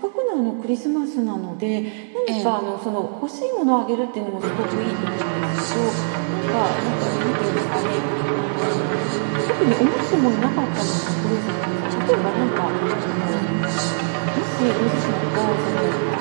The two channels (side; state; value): left; silent; digital silence